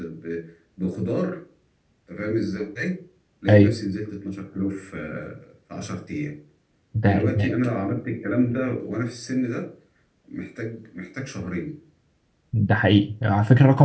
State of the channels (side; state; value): both; identical; correlation 1.00